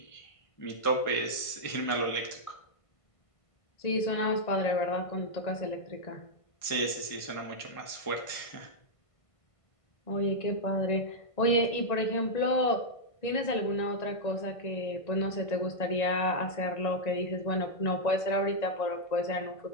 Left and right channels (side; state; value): right; late; 1.5 ms